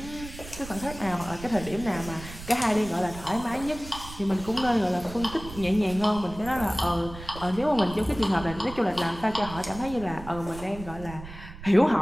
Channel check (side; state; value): right; noise; rumble, 13 dB below the sound